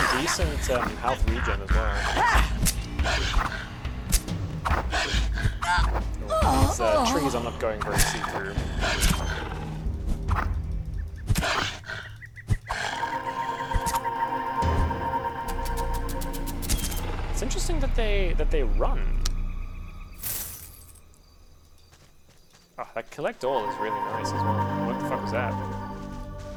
decent health regen as well. These trees I'm not going very see-through. It's interesting that they run. Oh, that collect all is really nice as well. What the fuck was that?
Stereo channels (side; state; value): both; identical; correlation 1.00